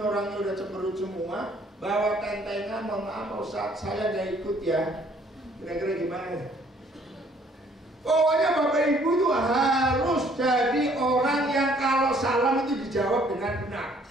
udah cemberut semua, bawa tentengan, mohon maaf Ustaz, saya nggak ikut ya. Kira-kira gimana? Pokoknya Bapak Ibu itu harus jadi orang yang kalau salam itu dijawab dengan benar.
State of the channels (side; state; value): both; normal; correlation 0.61